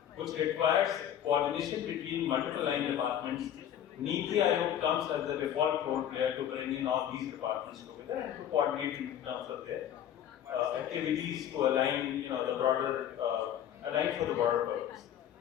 requires coordination between multiple line departments, NITI Aayog comes as the default role player to bring in all these departments together and to coordinate in terms of their activities to align, the broader, align for the broader purpose.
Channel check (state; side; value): quieter; right; 10.3 dB